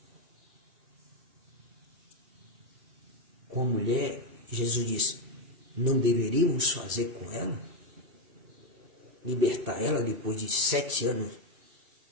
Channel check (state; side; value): late; left; 2.7 ms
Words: Com a mulher, Jesus disse, não deveríamos fazer com ela? Libertar ela depois de 7 anos,